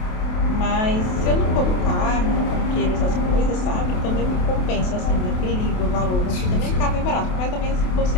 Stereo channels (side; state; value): right; late; 28 ms